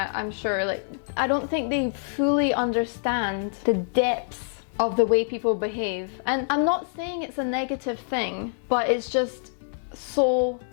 sure, like, I don't think they fully understand the depths of the way people behave. And I'm not saying it's a negative thing, but it's just so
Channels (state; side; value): silent; right; 61 dB below the other